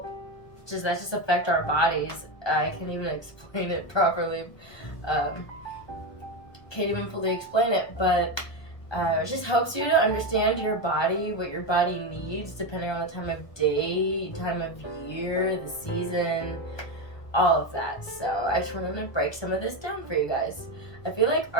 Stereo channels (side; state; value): right; late; 1.2 ms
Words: affect our bodies. I can't even explain it properly. Can't even fully explain it, but it just helps you to understand your body, what your body needs, depending on the time of day, time of year, the season, all of that. So I just wanted to break some of this down for you guys. I feel like